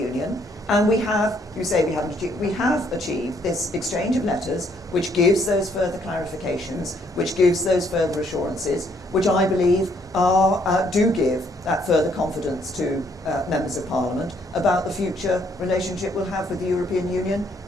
and we have, you say we haven't achieved, we have achieved this exchange of letters which gives those further clarifications, which gives those further assurances, which I believe do give that further confidence to members of Parliament about the future relationship we'll have with the European Union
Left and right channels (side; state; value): both; normal; correlation 0.68